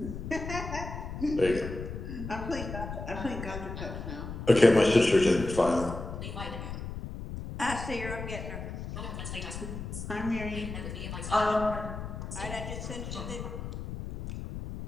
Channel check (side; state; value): left; noise; rumble, 7 dB below the sound